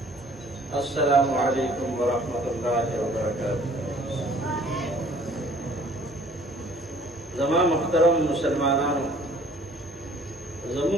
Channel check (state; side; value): normal; both; correlation 0.54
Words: अस्सलामु अलैकुम व रहमतुल्लाहि व बरकातुहू। जमा मुहतरम मुसलमानान,